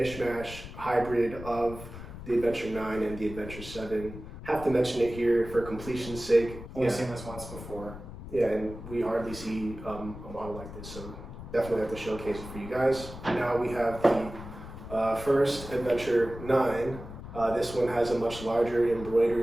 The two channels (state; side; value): noise; left; rumble, 12 dB below the sound